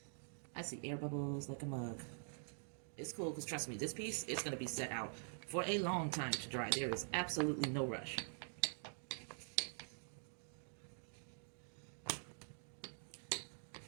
I see air bubbles like a mug. It's cool because trust me, this piece is going to be set out for a long time to dry. There is absolutely no rush.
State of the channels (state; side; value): silent; left; digital silence